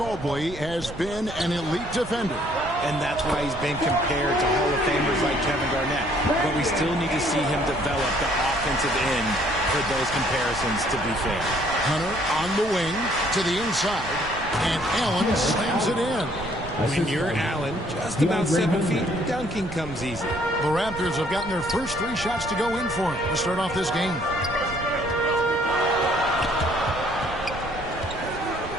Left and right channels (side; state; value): right; noise; rumble, 13 dB below the sound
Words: has been an elite defender. And that's why he's been compared to Hall of Famers like Kevin Garnett. But we still need to see him develop the offensive end for those comparisons to be fair. Hunter on the wing to the inside, and Allen slams it in. When you're Allen, just about 7 feet, dunking comes easy. The Raptors have gotten their first 3 shots to go in for him to start off this game.